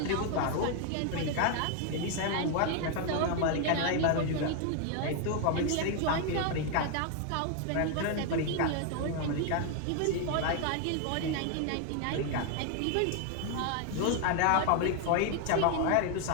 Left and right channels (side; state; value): both; different; correlation 0.01